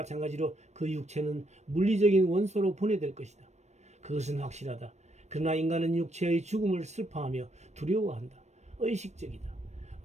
그 육체는 물리적인 원소로 분해될 것이다. 그것은 확실하다. 그러나 인간은 육체의 죽음을 슬퍼하며 두려워한다. 의식적이다.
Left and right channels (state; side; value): late; left; 0.33 ms